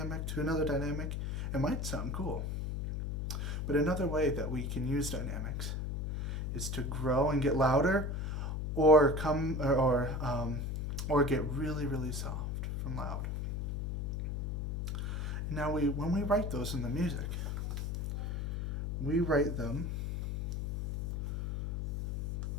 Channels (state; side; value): noise; left; hum, 2 dB below the sound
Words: to another dynamic, it might sound cool. But another way that we can use dynamics is to grow and get louder, or get really, really soft from loud. Now when we write those in the music, we write them